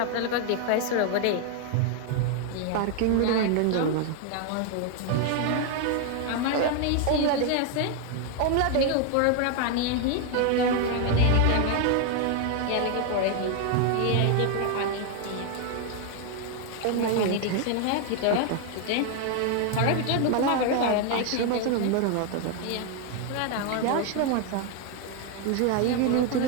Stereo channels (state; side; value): different; both; correlation 0.01